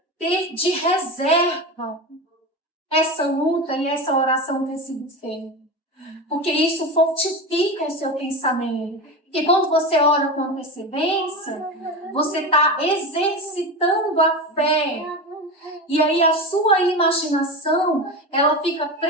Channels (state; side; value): normal; both; correlation 0.23